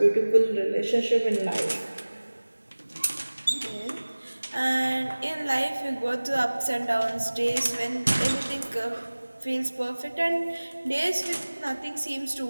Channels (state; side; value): inverted; both; correlation -1.00